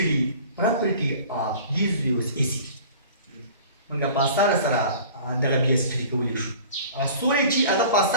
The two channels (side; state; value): both; inverted; correlation -0.44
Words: property of these waves AC. موږ په اسانه سره دغه بیا سټډي کولی شو سوری چې هغه په